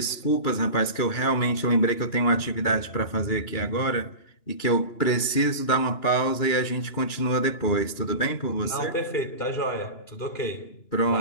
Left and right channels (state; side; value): late; right; 2.9 ms